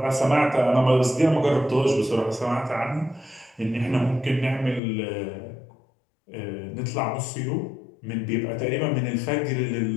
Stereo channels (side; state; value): right; drops out; at 4.8 s